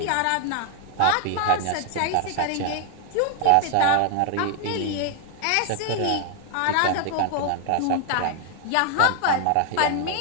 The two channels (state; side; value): different; both; correlation 0.00